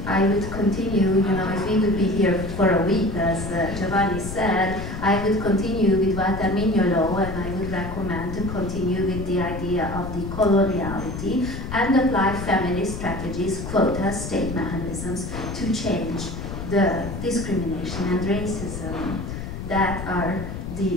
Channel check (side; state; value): left; noise; rumble, 7 dB below the sound